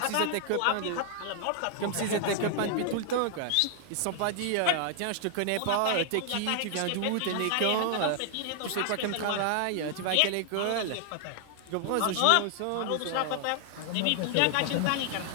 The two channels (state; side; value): different; both; correlation 0.00